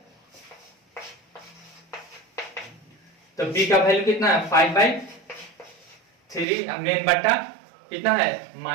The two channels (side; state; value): left; drops out; at 6.5 s